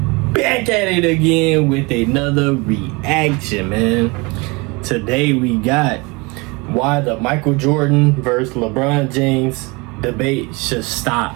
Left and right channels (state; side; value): quieter; left; 27.0 dB